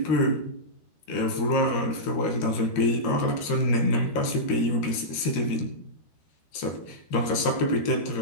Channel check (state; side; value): late; right; 13 ms